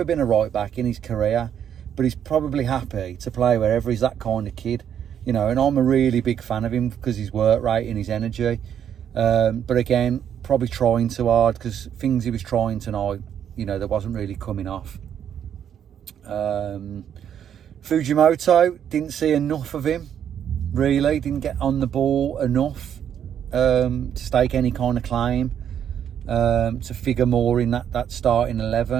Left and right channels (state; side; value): quieter; left; 9.1 dB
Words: been a right back in his career, but he's probably happy to play wherever. He's that kind of kid, you know, and I'm a really big fan of him because his work rate and his energy. But again, probably trying too hard, because things he was trying tonight, you know, that wasn't really coming off. Fujimoto, didn't see enough of him, really. Didn't get on the ball enough to stake any kind of claim, to figure more in that starting